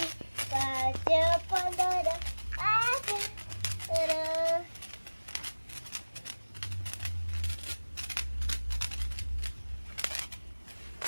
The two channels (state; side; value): inverted; both; correlation -1.00